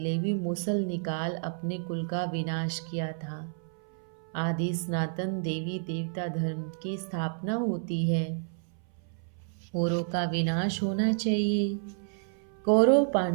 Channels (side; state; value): left; silent; 58 dB below the other